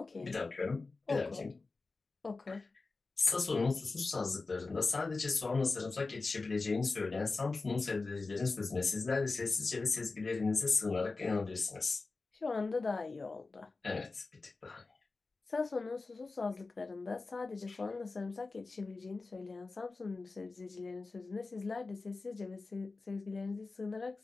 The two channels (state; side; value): quieter; right; 3.8 dB